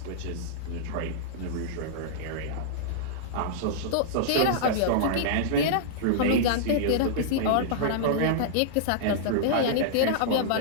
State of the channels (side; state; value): both; different; correlation -0.02